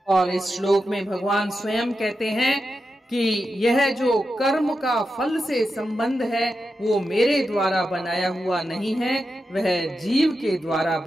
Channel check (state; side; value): normal; both; correlation 0.89